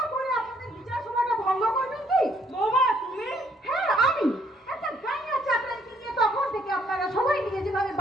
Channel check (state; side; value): normal; both; correlation 0.67